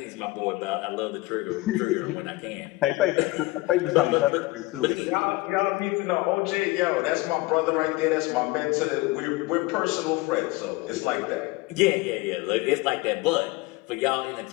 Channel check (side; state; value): right; quieter; 21.1 dB